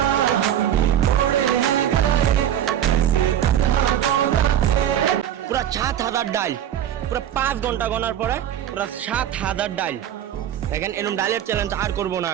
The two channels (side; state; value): left; quieter; 10.7 dB